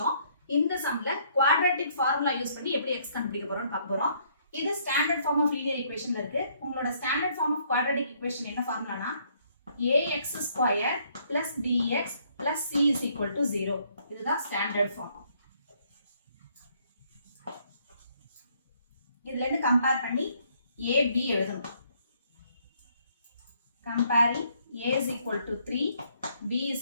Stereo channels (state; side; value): inverted; both; correlation -0.67